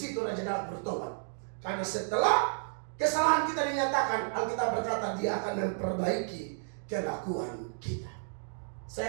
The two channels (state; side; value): silent; left; digital silence